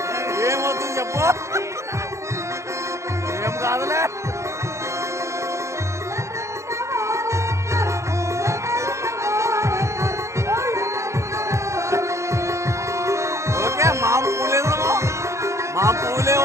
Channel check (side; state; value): left; late; 0.14 ms